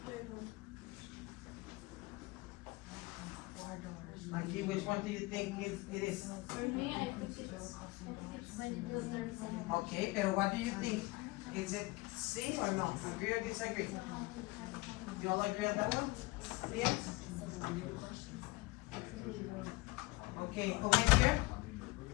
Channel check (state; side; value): quieter; right; 22.6 dB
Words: Mikey, which one do you think it is? For me, I think it's the third one. Okay, but what do you think? Is it C or no? Agree or disagree? You all agree on that one? Yes? Okay, over here,